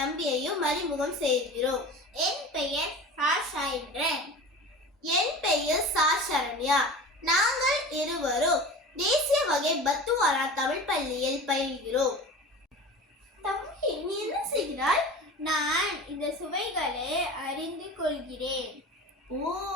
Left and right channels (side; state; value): both; normal; correlation 0.36